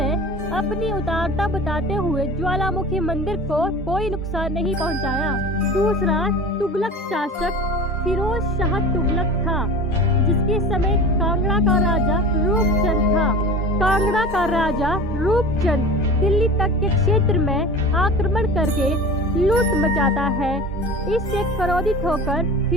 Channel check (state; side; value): normal; both; correlation 0.36